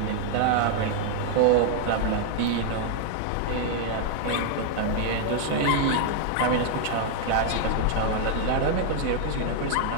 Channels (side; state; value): both; different; correlation 0.00